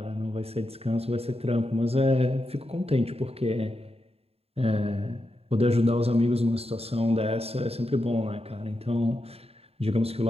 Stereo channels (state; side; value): late; left; 0.29 ms